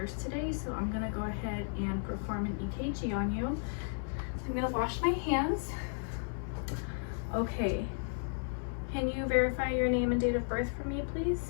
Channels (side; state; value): right; silent; 55 dB below the other